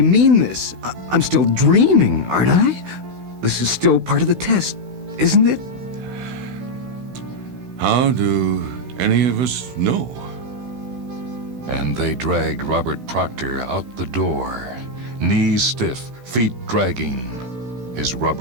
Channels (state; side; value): late; left; 16 ms